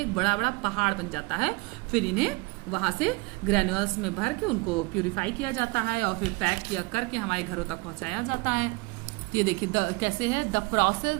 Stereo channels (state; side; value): quieter; left; 25.8 dB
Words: एक बड़ा बड़ा पहाड़ बन जाता है। फिर इन्हें वहाँ से ग्रैन्युअल्स में भर के उनको प्यूरिफाई किया जाता है और फिर पैक किया करके हमारे घरों तक पहुँचाया जाता है। ये देखिए कैसे है द